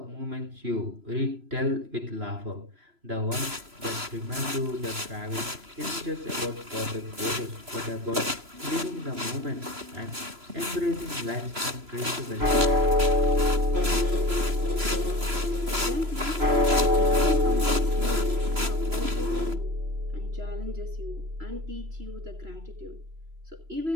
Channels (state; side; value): late; left; 3.0 ms